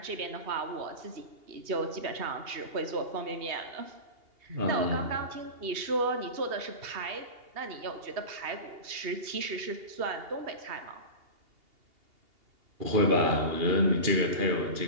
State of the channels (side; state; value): left; late; 2.8 ms